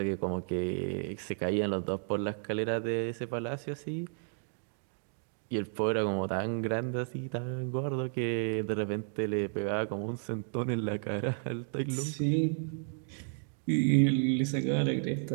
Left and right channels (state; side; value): silent; left; 56 dB below the other